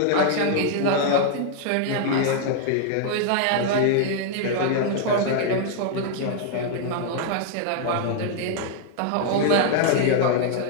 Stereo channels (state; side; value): different; both; correlation 0.00